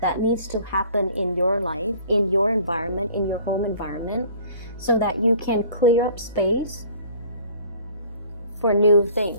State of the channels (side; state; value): both; inverted; correlation -0.51